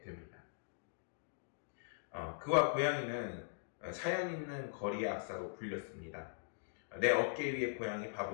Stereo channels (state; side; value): silent; right; digital silence